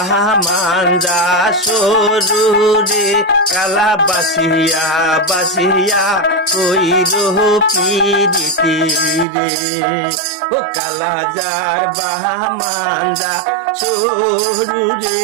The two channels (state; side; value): drops out; left; at 9.2 s